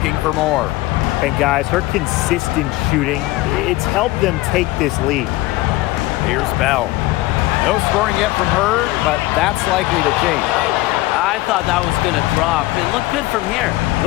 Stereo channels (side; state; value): right; quieter; 18.7 dB